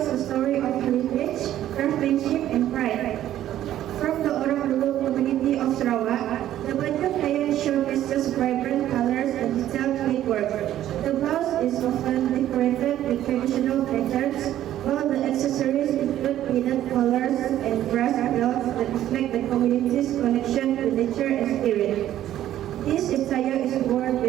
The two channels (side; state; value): left; quieter; 12.4 dB